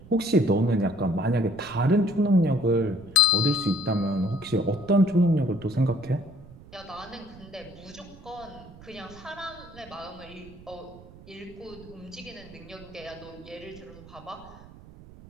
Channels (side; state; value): right; noise; rumble, 20 dB below the sound